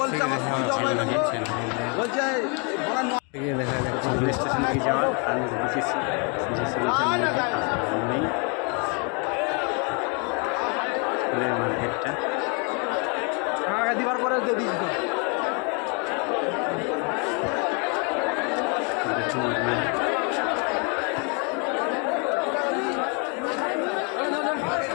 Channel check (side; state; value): right; quieter; 35.7 dB